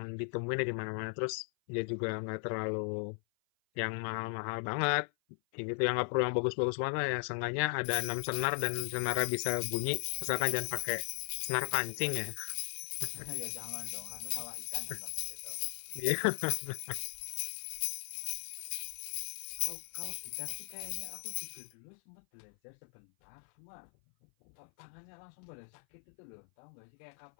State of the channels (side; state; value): right; silent; 53 dB below the other